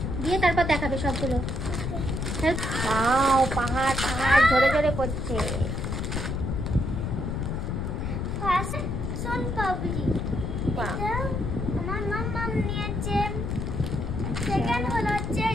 দিয়ে তারপর দেখাবে সবগুলো। ওয়াও, পাহাড় পাহাড় ঝরে ঝরে পড়ছে। ফার্স্ট সোন পাপড়ি, এটা আমার মাম্মা নিয়েছে। সেকেন্ড হলো হচ্ছে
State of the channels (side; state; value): left; noise; rumble, 2 dB below the sound